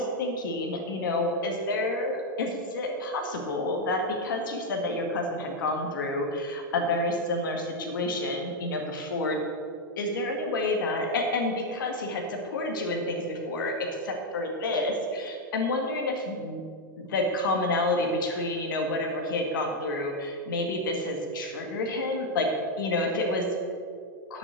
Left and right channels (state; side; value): normal; both; correlation 0.01